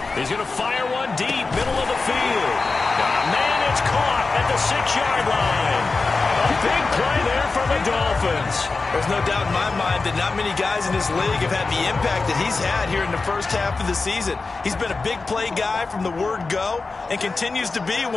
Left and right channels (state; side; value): quieter; right; 3.9 dB